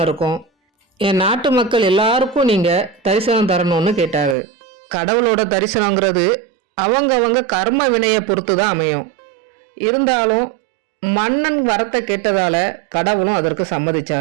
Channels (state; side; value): drops out; left; at 4.4 s